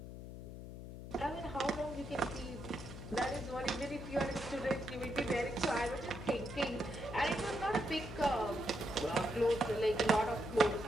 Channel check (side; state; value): left; noise; hum, 11 dB below the sound